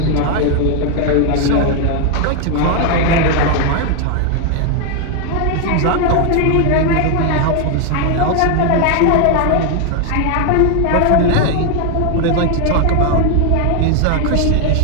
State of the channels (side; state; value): both; different; correlation 0.00